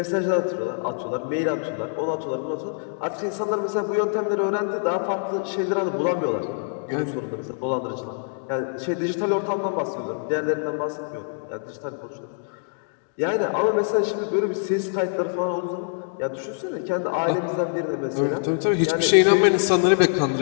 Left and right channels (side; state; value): right; silent; digital silence